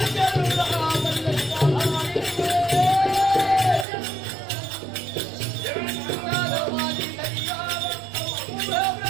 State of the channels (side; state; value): left; drops out; at 3.9 s